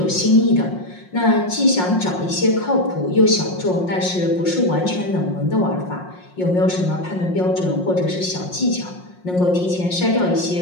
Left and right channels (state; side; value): late; right; 5.6 ms